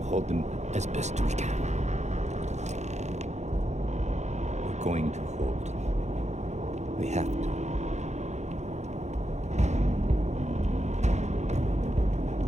hold them as best we can. We're going to hold. We have to.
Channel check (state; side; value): late; left; 0.33 ms